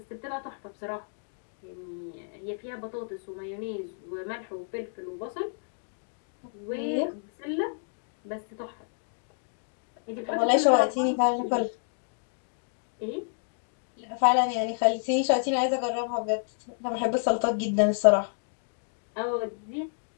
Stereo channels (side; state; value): right; silent; digital silence